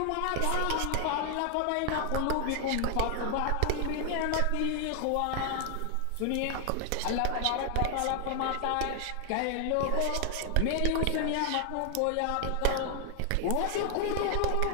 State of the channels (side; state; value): both; different; correlation 0.00